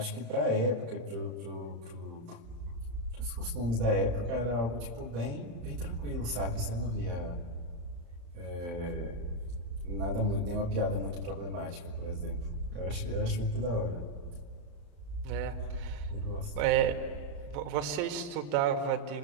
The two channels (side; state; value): left; late; 35 ms